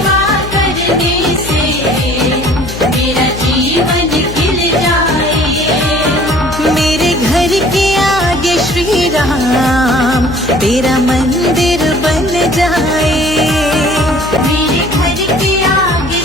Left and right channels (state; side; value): noise; left; hum, 10 dB below the sound